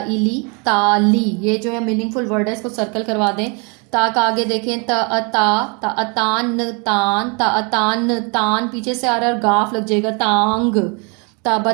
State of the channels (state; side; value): quieter; left; 33.1 dB